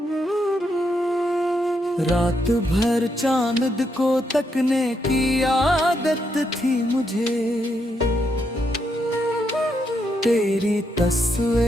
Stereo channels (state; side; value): normal; both; correlation 0.79